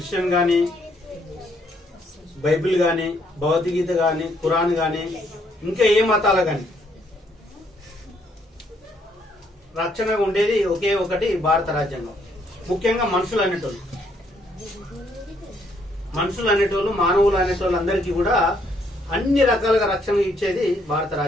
గాని, బైబిల్ గాని, భగవద్గీత గాని, ఖురాన్ గాని, ఇంకా ఏ మతాల గాని రక్షణగా ఉండేది ఒకే ఒకటి భారత రాజ్యాంగం. ముఖ్యంగా మనుషులు అనేటోళ్ళు మానవులు అనేటోళ్ళు అందరికీ కూడా అన్ని రకాలుగా రక్షణ ఇచ్చేది భారత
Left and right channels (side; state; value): both; normal; correlation 0.70